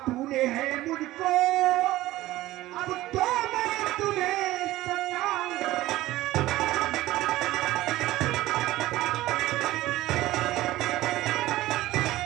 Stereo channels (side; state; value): left; quieter; 16.5 dB